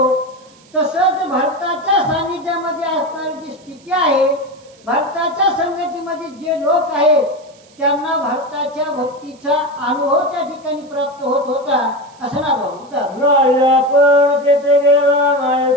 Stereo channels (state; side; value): noise; right; hiss, 28 dB below the sound